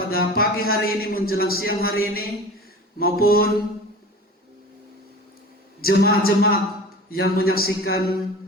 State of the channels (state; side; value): normal; both; correlation 0.38